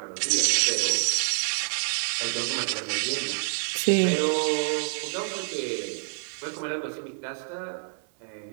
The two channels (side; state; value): left; silent; 57 dB below the other